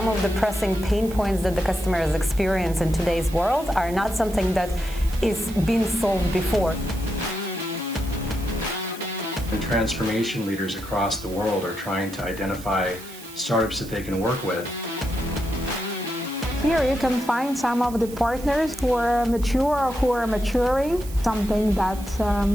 of the pressing pain points that the customers experience in today's world are not something that is being solved before. And transformation leaders across the world are trying to identify startups that they can work with. Here you can find some of the partners who are mature or who are maturing, something that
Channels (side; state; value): right; noise; hiss, 17 dB below the sound